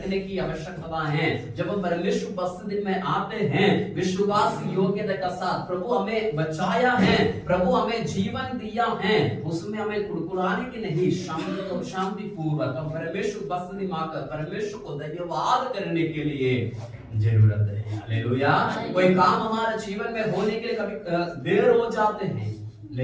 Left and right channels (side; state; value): both; identical; correlation 1.00